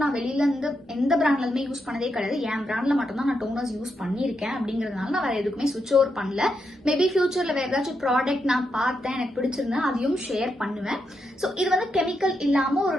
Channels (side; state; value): both; normal; correlation 0.83